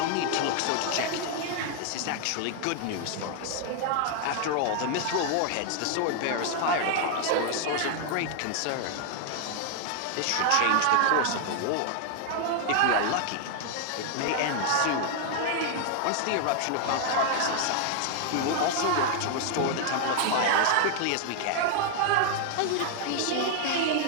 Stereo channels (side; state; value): both; different; correlation 0.00